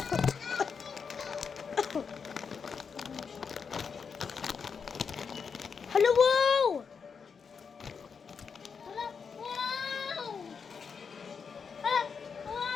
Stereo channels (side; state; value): right; quieter; 6.0 dB